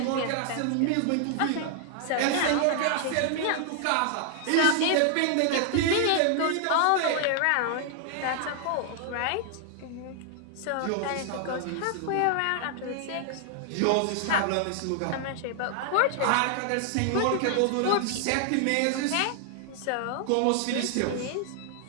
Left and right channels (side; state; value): both; different; correlation 0.00